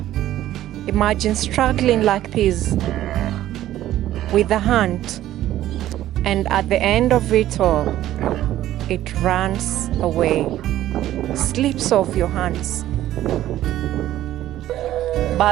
Imagine struggling like this with the hunt, and at the end of it all, it runs away, slips off your hands.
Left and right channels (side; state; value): left; quieter; 13.5 dB